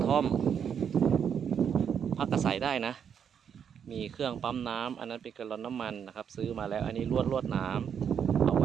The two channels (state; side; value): quieter; left; 7.9 dB